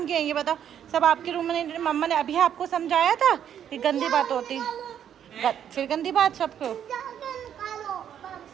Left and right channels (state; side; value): quieter; left; 9.4 dB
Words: के हैं, ये बताओ। सब आपके रूम में। मम्मा ने अभी आपको समझाया था कि गंदी बात होती, फिर गंदी बात सबको।